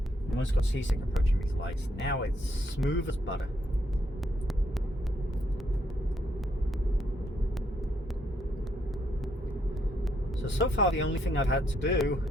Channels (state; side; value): normal; both; correlation 0.74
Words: Almost got seasick approaching these lights. Now it's smooth as butter. So far the only thing I've had to do